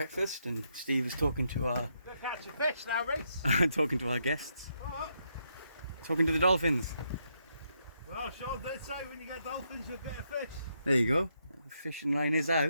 and Steve is talking to our Go catch your fish now, Reese. talking to our guests, What? talking to the dolphins. Well, Sean did say when you get dolphins, you'll get a fish. There you go. The fishing line is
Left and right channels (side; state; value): both; inverted; correlation -0.79